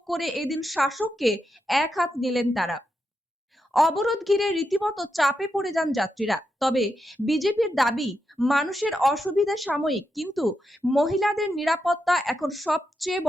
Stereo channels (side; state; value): both; normal; correlation 0.85